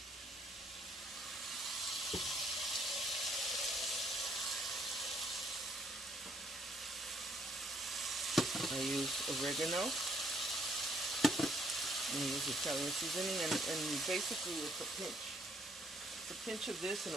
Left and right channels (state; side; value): normal; both; correlation 0.68